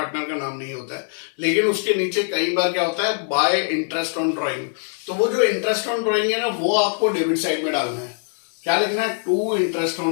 का नाम नहीं होता है, लेकिन उसके नीचे कई बार क्या होता है, बाय इंटरेस्ट ऑन ड्रॉइंग। तो वो जो इंटरेस्ट ऑन ड्रॉइंग है ना, वो आपको डेबिट साइड में डालना है। क्या लिखना है, टू इंटरेस्ट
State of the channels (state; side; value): silent; right; 64 dB below the other